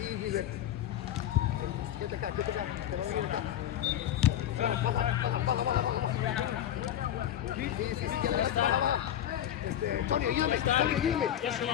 Gilbert. Quédate acá. Te va a venir acá. Baja. Sí, quédate acá. Baja. Tony, ayúdame.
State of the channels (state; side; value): quieter; right; 11.2 dB